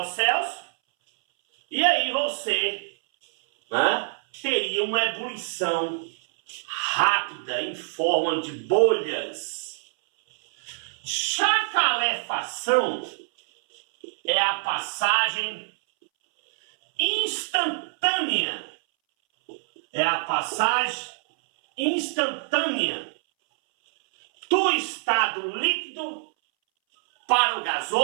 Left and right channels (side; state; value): left; silent; 62 dB below the other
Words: Celsius, e aí você, né, teria uma ebulição rápida em forma de bolhas. Já a calefação é a passagem instantânea. É a passagem instantânea do estado líquido para o